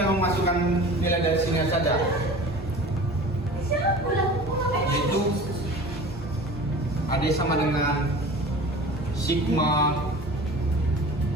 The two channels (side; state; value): both; normal; correlation 0.39